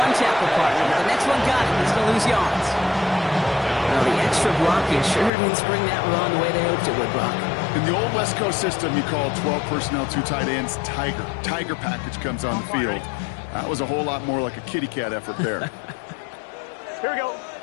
tackle partner, but the next one got him. He's going to lose yards. Well, the extra blocking sure didn't spring that run the way they hoped it would, Brock. In the old West Coast system, you call 12 personnel, 2 tight ends, Tiger. Tiger package comes on the field. That was a whole lot more like a kitty cat effort there. Here we go.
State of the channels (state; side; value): drops out; right; at 5.3 s